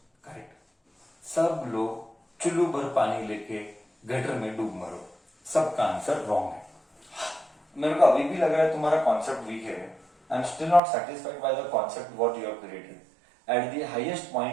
correct. सब लोग चुल्लू भर पानी लेके गटर में डूब मरो, सबका आंसर रॉन्ग है। मेरे को अभी भी लग रहा है तुम्हारा कॉन्सेप्ट वीक है। I am still not satisfied by the concept what you have created. Eight the highest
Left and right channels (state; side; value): drops out; left; at 10.8 s